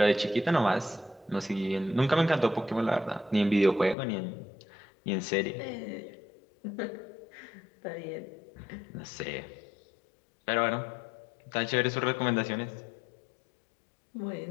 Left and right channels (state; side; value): drops out; right; at 4.0 s